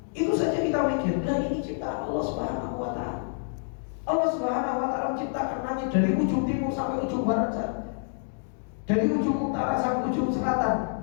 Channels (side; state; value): right; silent; digital silence